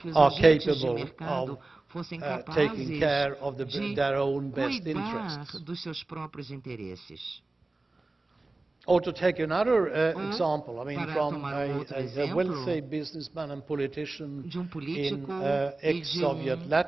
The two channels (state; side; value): quieter; left; 3.1 dB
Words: are capable of taking care of their own best interests. dos seus próprios interesses. Or to take another example, I mean, from a wealthy businessman and politician in ex-Soviet